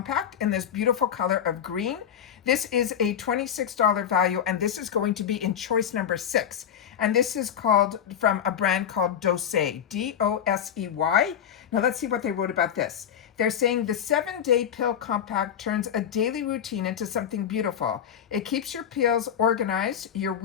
in this beautiful color of green. This is a $26 value, and this is going to be in choice number 6. And this is called, from a brand called Doseay, D-O-S-E-Y. Now let's see what they wrote about this. They're saying the 7-day pill compact turns a daily routine into something beautiful. It keeps your pills organized, your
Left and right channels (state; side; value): quieter; right; 8.9 dB